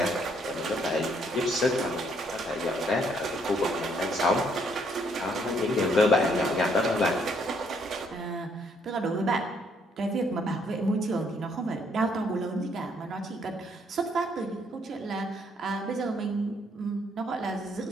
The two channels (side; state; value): both; normal; correlation 0.68